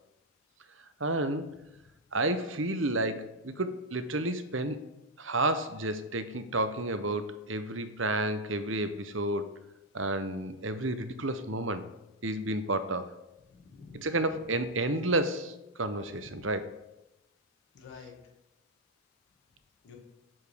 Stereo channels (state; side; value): normal; both; correlation 0.00